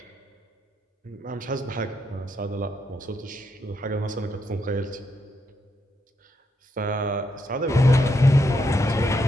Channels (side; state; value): both; normal; correlation 0.79